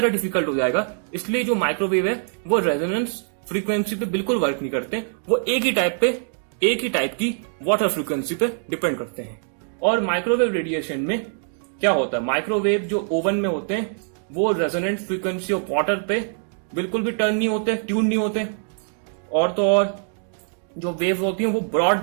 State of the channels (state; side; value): silent; left; digital silence